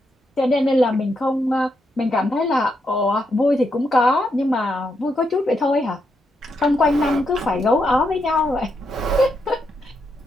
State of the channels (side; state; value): both; normal; correlation 0.81